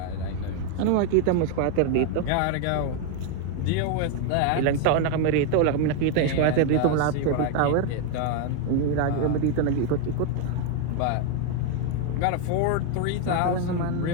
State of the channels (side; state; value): both; different; correlation 0.01